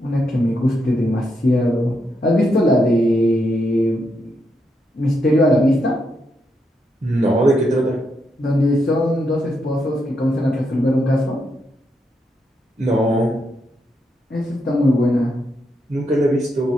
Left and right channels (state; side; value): normal; both; correlation 0.81